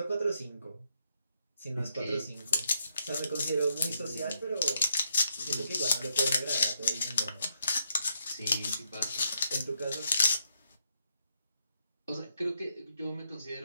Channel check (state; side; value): inverted; both; correlation -0.77